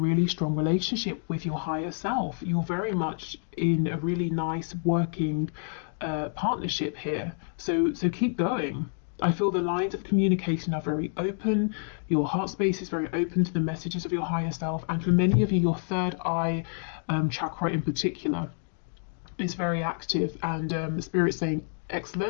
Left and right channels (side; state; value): right; silent; 59 dB below the other